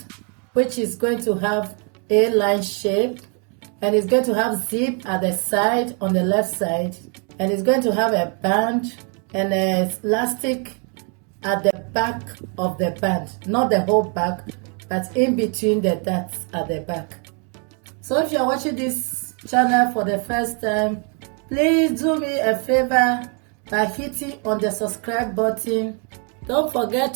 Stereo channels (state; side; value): quieter; left; 38.5 dB